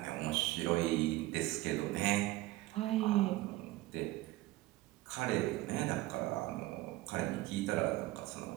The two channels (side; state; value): left; quieter; 18.1 dB